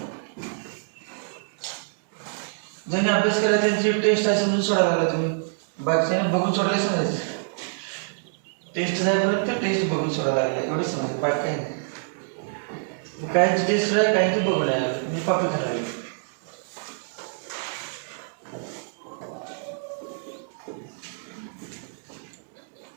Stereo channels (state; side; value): silent; left; digital silence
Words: ज्यांनी अभ्यास केला त्यांची टेस्ट आहे समजून सोडायला लागला तुम्ही, बाकीच्याने बघून सोडले समजायचं. टेस्ट जाईपर्यंत टेस्ट बघून सोडायला लागले एवढे समजायचं, बाकी काही नाही. काहींची टेस्ट आहे काहींची बघून आहे, मी कॉपी करायला लागली.